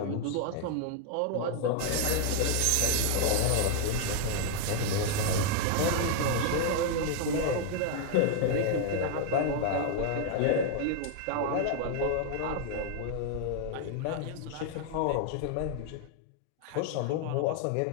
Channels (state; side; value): different; both; correlation 0.00